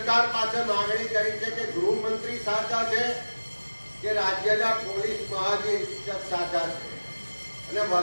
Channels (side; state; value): both; inverted; correlation -1.00